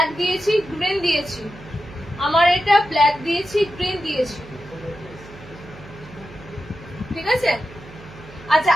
দিয়েছি, গ্রিন দিয়েছি, আমার এটা ব্ল্যাক দিয়েছি, গ্রিন দিয়েছি, ঠিক আছে। আচ্ছা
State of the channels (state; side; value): noise; right; hum, 19 dB below the sound